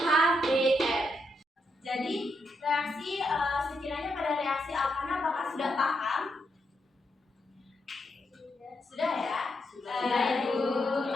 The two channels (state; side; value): normal; both; correlation 0.81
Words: HBr. Jadi, reaksi sekiranya pada reaksi alkana apakah sudah paham? Sudah ya? Ibu.